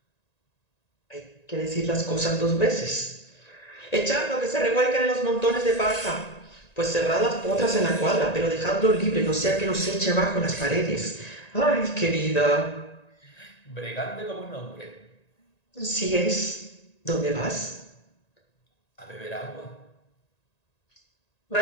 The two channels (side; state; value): right; late; 1.9 ms